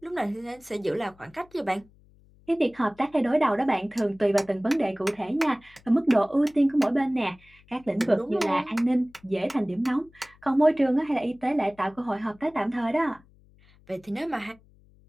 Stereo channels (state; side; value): noise; left; hum, 28 dB below the sound